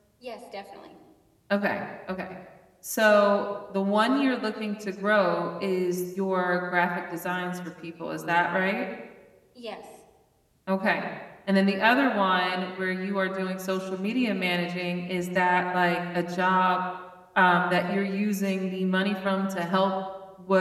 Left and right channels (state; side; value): identical; both; correlation 1.00